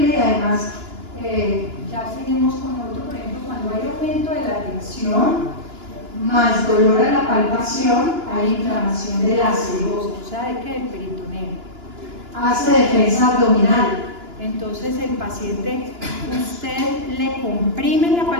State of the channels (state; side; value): late; left; 2.9 ms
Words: y además ya seguimos con otro, por ejemplo, cuando hay aumento de la tensión, más dolor a la palpación, hay inflamación de la serosa, o sea, de que el peritoneo. Hace defensa abdominal. Entonces el paciente, usted le comprime la